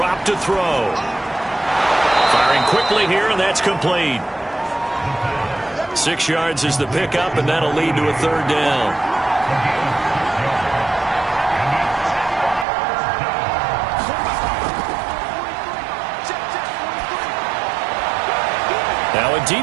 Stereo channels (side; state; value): left; drops out; at 12.7 s